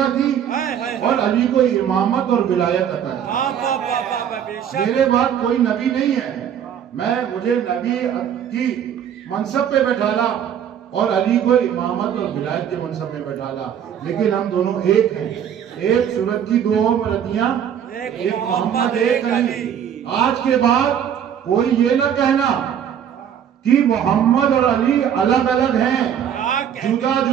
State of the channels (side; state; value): left; quieter; 9.0 dB